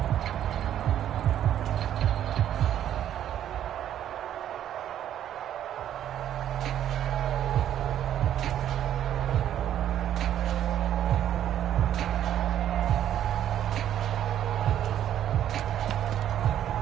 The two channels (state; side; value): quieter; left; 10.8 dB